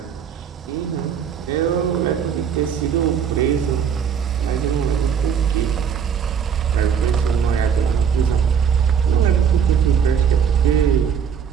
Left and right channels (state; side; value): quieter; left; 7.4 dB